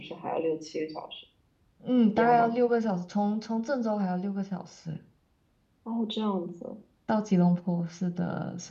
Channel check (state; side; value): identical; both; correlation 1.00